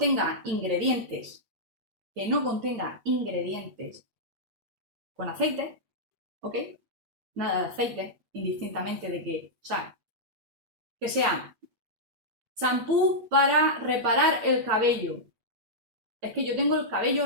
ingredientes que no contenga ingredientes con aceite, ¿ok? Nada de aceite, indistintamente de que, o sea, que sea champú para reparar el cabello. Es que yo tengo el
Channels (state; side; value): late; left; 9.4 ms